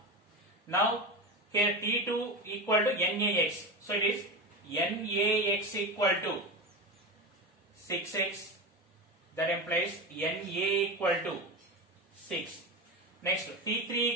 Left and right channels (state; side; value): normal; both; correlation 0.22